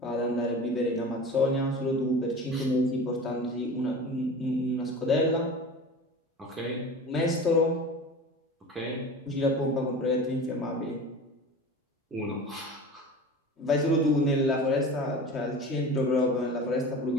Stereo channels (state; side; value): normal; both; correlation 0.35